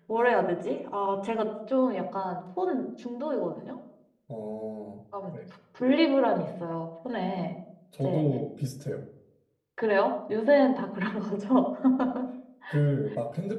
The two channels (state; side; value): identical; both; correlation 1.00